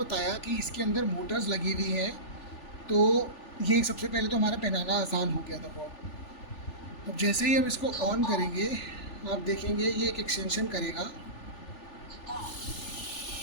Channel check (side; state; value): right; late; 3.4 ms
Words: कि इसके अंदर मोटर्स लगी हुई हैं, तो ये सबसे पहले तो हमारा पहनाना आसान हो गया था बहुत। अब जैसे ही हम इसको ऑन करेंगे आप देखेंगे ये एक एक्सटेंशन करेगा